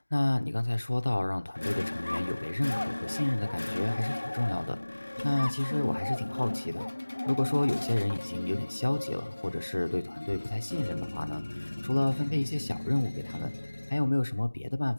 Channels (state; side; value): inverted; both; correlation -1.00